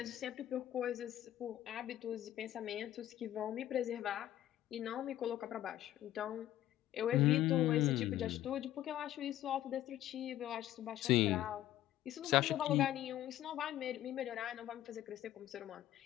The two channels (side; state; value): right; quieter; 13.2 dB